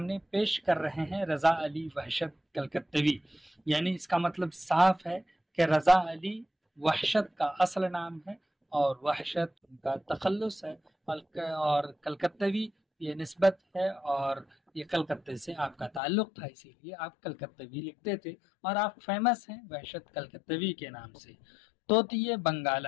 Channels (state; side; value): drops out; right; at 16.0 s